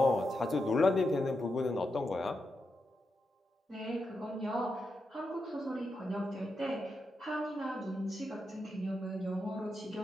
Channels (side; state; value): both; normal; correlation 0.86